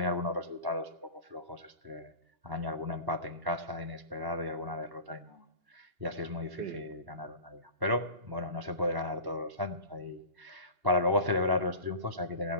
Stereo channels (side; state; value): left; late; 2.9 ms